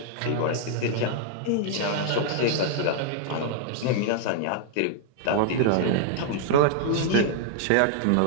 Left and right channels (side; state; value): both; different; correlation -0.01